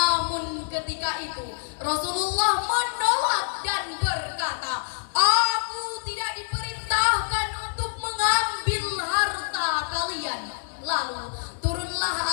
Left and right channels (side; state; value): right; silent; digital silence